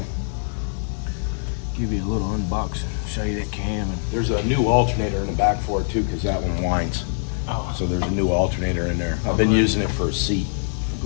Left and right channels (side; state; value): right; silent; digital silence